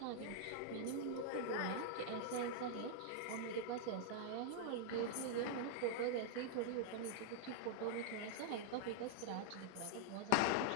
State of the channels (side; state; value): both; different; correlation -0.01